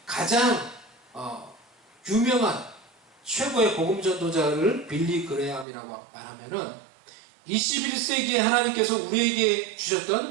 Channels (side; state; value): left; drops out; at 5.7 s